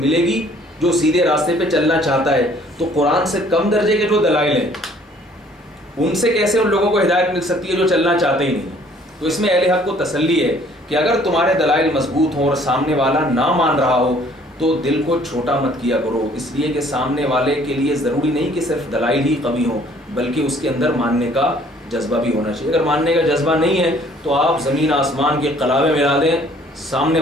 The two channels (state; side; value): normal; both; correlation 0.58